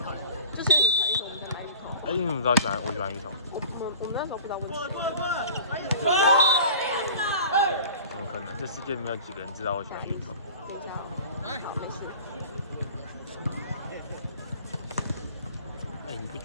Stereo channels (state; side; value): inverted; both; correlation -0.41